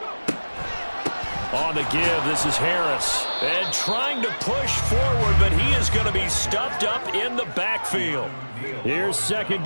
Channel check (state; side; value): inverted; both; correlation -1.00